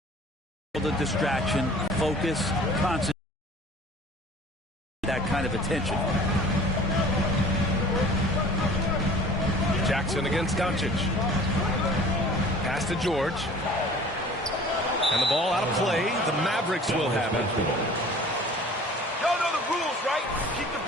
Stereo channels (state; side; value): normal; both; correlation 0.46